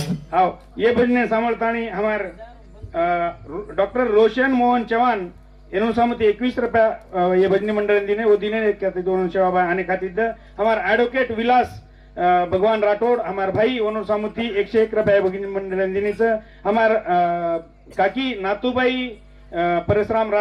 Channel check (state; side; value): identical; both; correlation 1.00